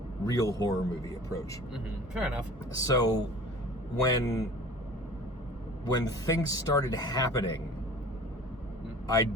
real horror movie approach. Fair enough. So when things started happening, I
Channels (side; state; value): both; normal; correlation 0.44